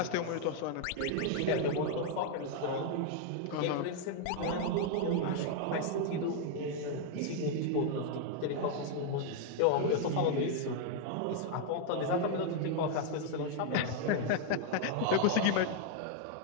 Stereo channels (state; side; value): different; both; correlation 0.00